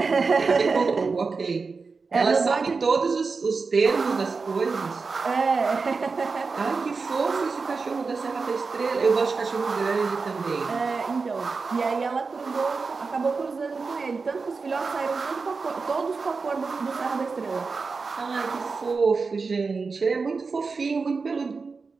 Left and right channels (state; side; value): quieter; left; 4.5 dB